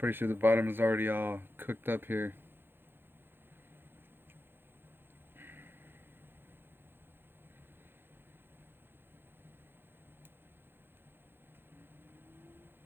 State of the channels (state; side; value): late; left; 0.10 ms